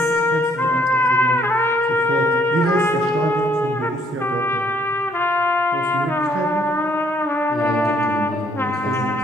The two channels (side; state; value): both; normal; correlation 0.67